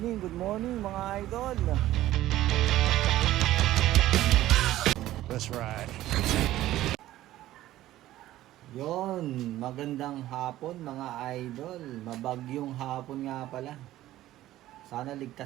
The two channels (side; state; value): left; quieter; 14.7 dB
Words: mga idol. That's right. Yon, magandang hapon mga idol. Mabagyong hapon nga pala. Sana